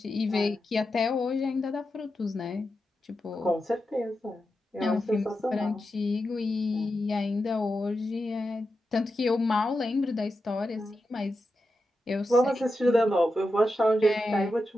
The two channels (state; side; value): normal; both; correlation 0.89